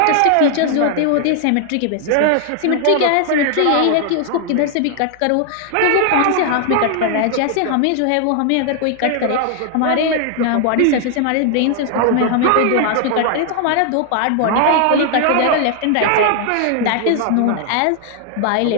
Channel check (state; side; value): different; both; correlation 0.00